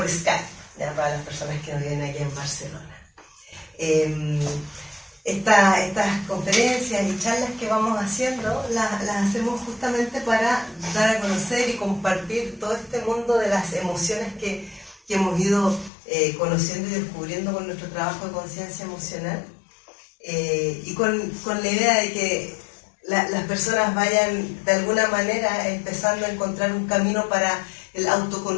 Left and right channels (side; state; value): right; drops out; at 15.9 s